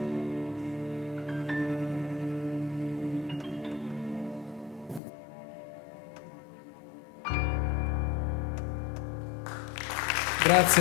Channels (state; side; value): drops out; right; at 5.0 s